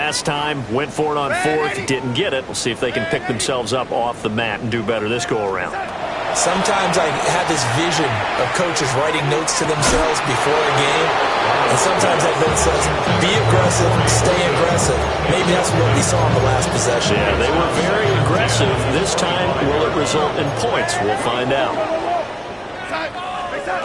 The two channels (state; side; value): identical; both; correlation 1.00